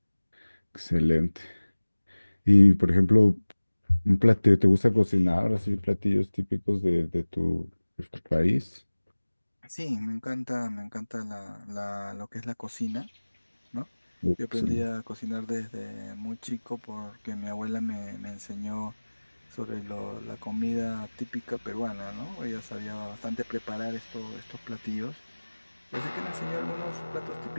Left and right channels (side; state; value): both; inverted; correlation -1.00